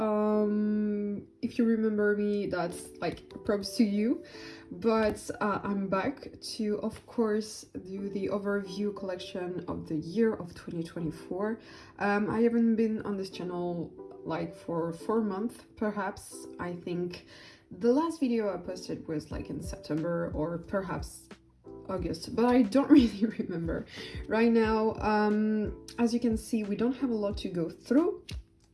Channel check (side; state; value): both; identical; correlation 1.00